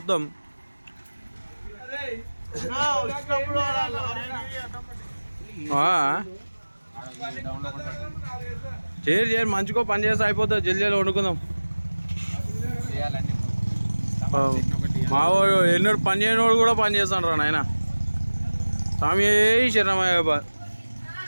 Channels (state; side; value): inverted; both; correlation -1.00